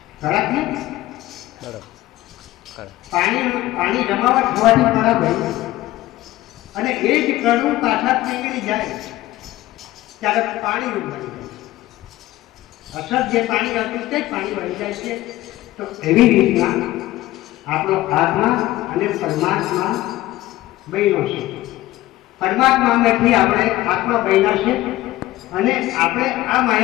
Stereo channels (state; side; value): quieter; right; 16.3 dB